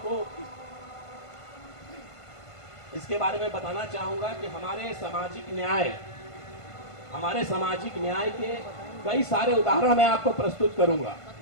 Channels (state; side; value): late; right; 1.5 ms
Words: को इसके बारे में बताना चाहूंगा कि हमारे सामाजिक न्याय के कई सारे उदाहरण मैं आपको प्रस्तुत करूंगा।